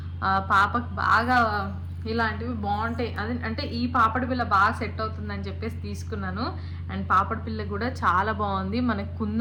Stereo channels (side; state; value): both; identical; correlation 1.00